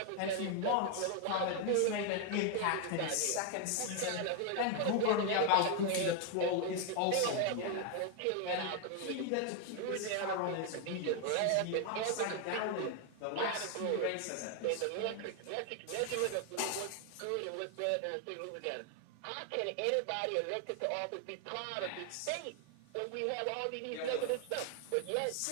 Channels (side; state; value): both; different; correlation 0.01